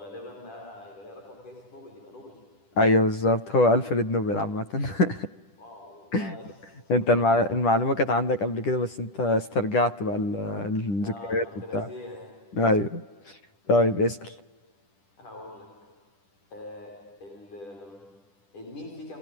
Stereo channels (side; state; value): right; late; 10 ms